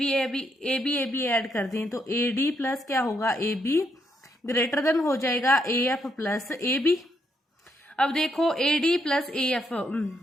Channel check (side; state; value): both; normal; correlation 0.77